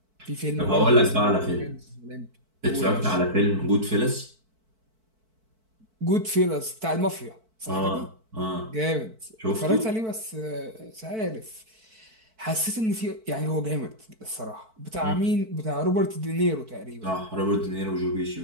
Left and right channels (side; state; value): left; late; 4.5 ms